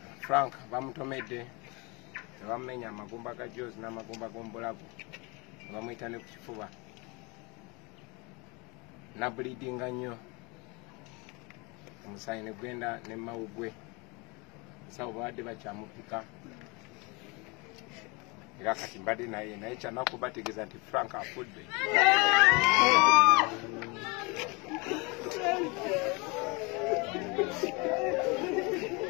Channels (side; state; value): right; quieter; 28.1 dB